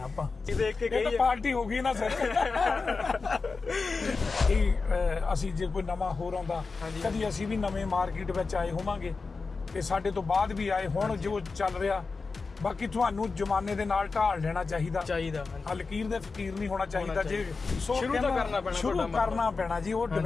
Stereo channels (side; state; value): right; quieter; 4.3 dB